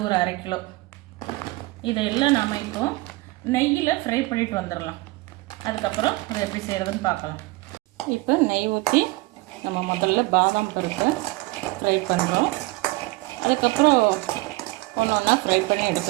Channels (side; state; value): left; quieter; 21.8 dB